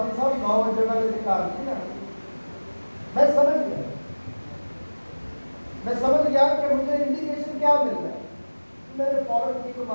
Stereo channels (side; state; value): both; inverted; correlation -1.00